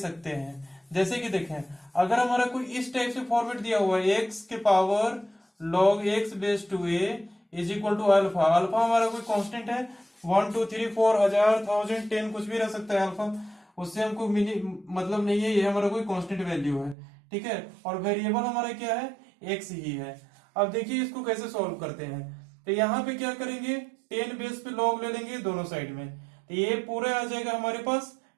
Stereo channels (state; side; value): drops out; left; at 16.9 s